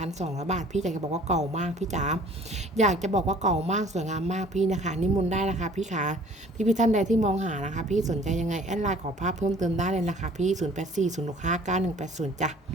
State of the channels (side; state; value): both; normal; correlation 0.52